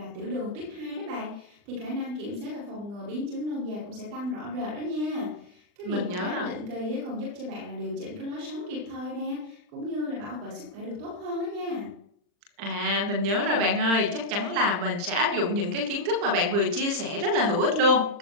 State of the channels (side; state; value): left; late; 40 ms